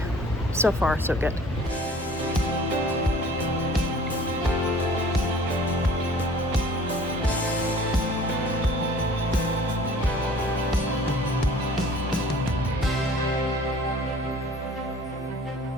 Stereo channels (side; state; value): both; normal; correlation 0.49